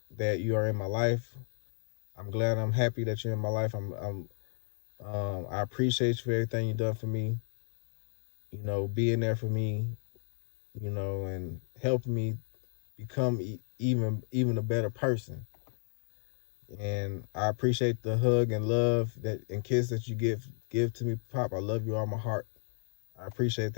that you are in my life. I'm glad. I'm happy that you're in my life. I appreciate you for everything you've done for me. You know, being there for me. You know, and helping me become even a better person. And I appreciate the hug and love that and kiss that you give to me, Pop. I love you all my heart. I appreciate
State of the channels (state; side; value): silent; right; digital silence